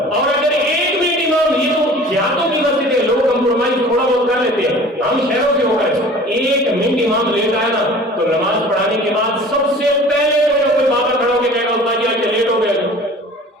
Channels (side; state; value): both; normal; correlation 0.44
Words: اور اگر 1 منٹ امام، یہ تو دیہاتوں کی مسجد ہے، لوگ کمپرومائز تھوڑا بہت کر لیتے ہیں، ہم شہروں سے ہو کر 1 منٹ امام لیٹ آیا نا تو نماز پڑھانے کے بعد سب سے پہلے کوئی بابا کھڑا ہو کے کہے گا استاد جی آج لیٹ ہو گئے۔